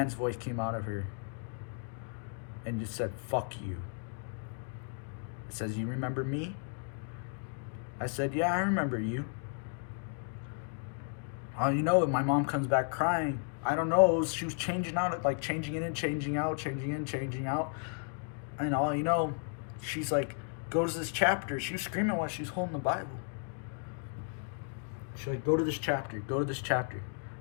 voice came out of her and just said, fuck you. It says, you remember me? I said, yeah, I remember you. My mom comes back crying. I don't know, she was changing out, like changing in and changing out, changing in, changing out. And she's like, go to this chapter. She was screaming while she was holding the Bible. She's like, go to this chapter, go to this chapter.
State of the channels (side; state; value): right; silent; 55 dB below the other